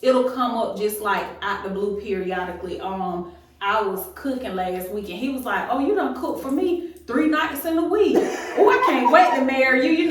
it'll come up just like out the blue periodically. I was cooking last week and he was like, oh, you done cook for me 3 nights in a week. Oh, I can't wait to marry you. You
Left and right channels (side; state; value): both; identical; correlation 1.00